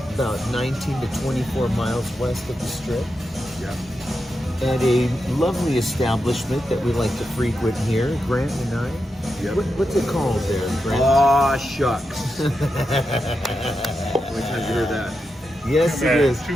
about 19 to 24 miles west of the Strip. Yeah. At a lovely establishment that we like to frequent here, Grant and I. Yep. What's it called there, Grant? Aw, shucks. How many times you heard that? Yes, it is.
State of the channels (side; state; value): both; normal; correlation 0.87